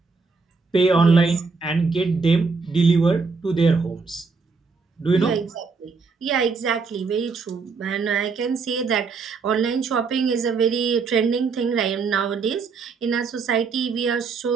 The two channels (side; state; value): left; quieter; 4.7 dB